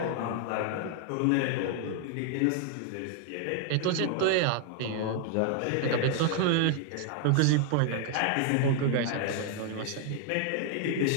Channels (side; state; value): both; different; correlation 0.00